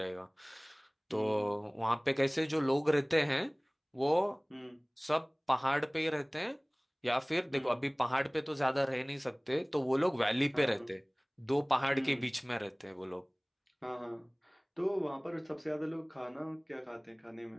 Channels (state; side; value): identical; both; correlation 1.00